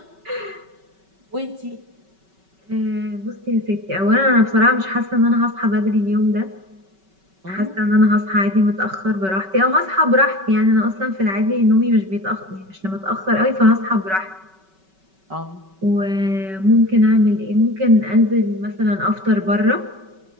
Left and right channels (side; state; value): left; late; 5.3 ms